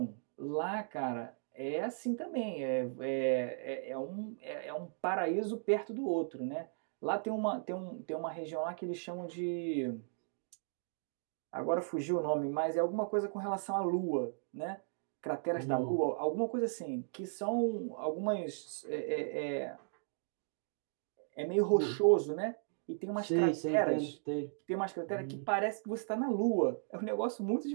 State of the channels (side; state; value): left; silent; digital silence